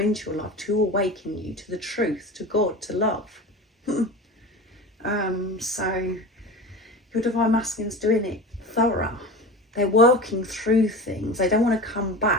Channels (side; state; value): both; normal; correlation 0.31